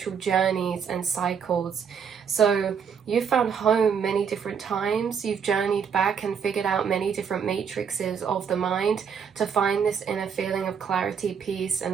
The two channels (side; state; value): left; quieter; 7.0 dB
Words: journeys and cycles. So you've found home many different times, you've journeyed back and figured out many different matrices of the mind to find this inner feeling of clarity, peace,